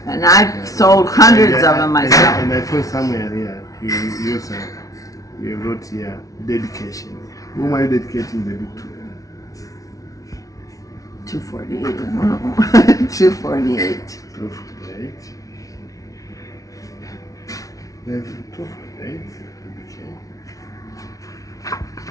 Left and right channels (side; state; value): right; late; 0.17 ms